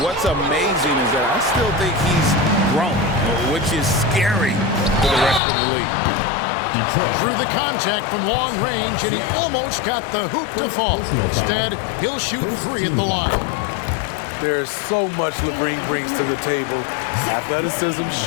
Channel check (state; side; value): drops out; right; at 5.4 s